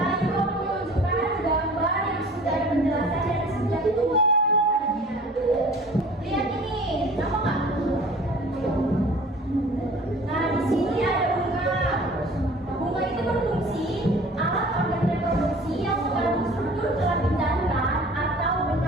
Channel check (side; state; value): both; normal; correlation 0.46